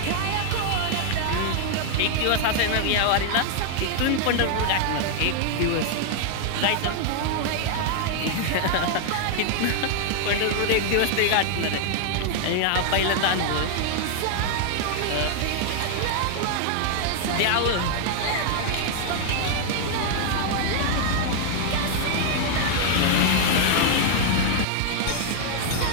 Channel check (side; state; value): both; different; correlation 0.00